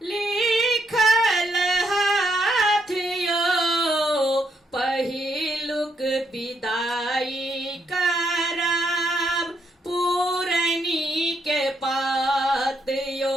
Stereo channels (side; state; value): both; normal; correlation 0.76